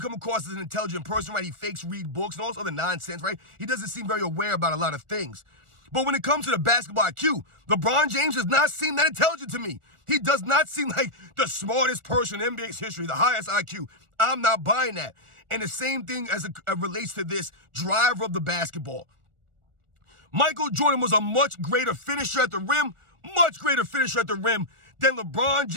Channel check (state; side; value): late; left; 1.4 ms